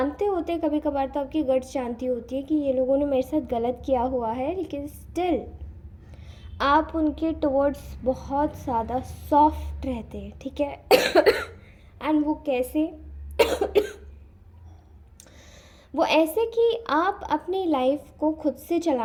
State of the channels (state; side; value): identical; both; correlation 1.00